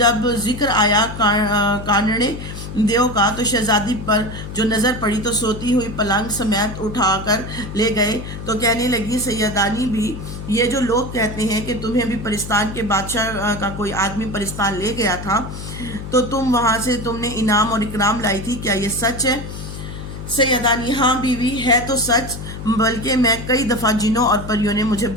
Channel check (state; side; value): noise; left; hum, 9 dB below the sound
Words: ذکر آیا کانڑے دیو کا تو شہزادی پر جو نظر پڑی تو سوتی ہوئی پلنگ سمیت اٹھا کر لے گئے، تو کہنے لگی سیدانی بھی، یہ جو لوگ کہتے ہیں کہ تمہیں بھی پرستان کے بادشاہ کا کوئی آدمی پرستان لے گیا تھا تو تم وہاں سے تم نے انعام اور اکرام لائی تھی، کیا یہ سچ ہے؟ سیدانی: ہاں بیوی، ہے تو سچ، بلکہ میں کئی دفعہ جنوں اور پریوں نے مجھے